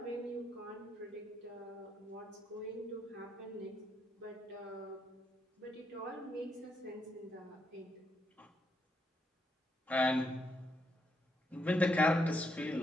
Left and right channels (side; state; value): both; normal; correlation 0.78